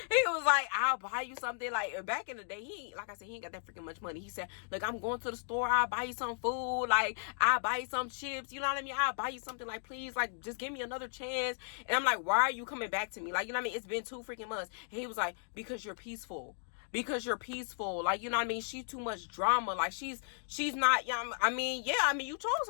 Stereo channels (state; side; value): silent; right; digital silence